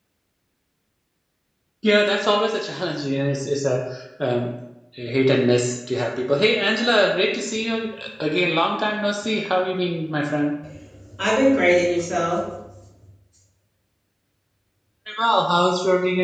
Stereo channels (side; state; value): both; identical; correlation 1.00